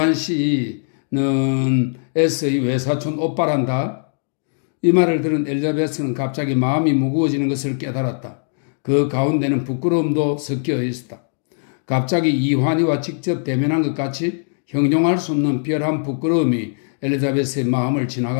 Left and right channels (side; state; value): right; silent; digital silence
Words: 씨는 S의 외사촌 오빠란다. 이 말을 들은 엘리자베스는 갑자기 마음이 무거워지는 것을 깨달았다. 그 가운데는 부끄러움도 섞여 있었다. 갑자기 이환이와 직접 대면한 것 같이 형용할 수 없는 별한 부끄러움이 엘리자베스의 마음을